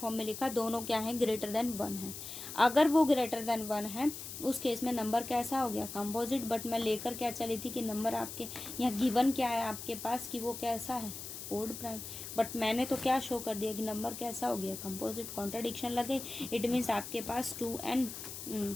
में लिखा, दोनों क्या है, ग्रेटर देन 1 है। अगर वो ग्रेटर देन 1 है, उस केस में नंबर कैसा हो गया, कंपोजिट। बट मैं लेकर क्या चली थी कि नंबर आपके यहाँ गिवन क्या है आपके पास, कि वो कैसा है, ओड प्राइम। बट मैंने तो क्या शो कर दिया कि नंबर कैसा हो गया, कंपोजिट। कॉन्ट्राडिक्शन लगे, इट मीन्स आपके पास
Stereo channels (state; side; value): noise; left; hiss, 9 dB below the sound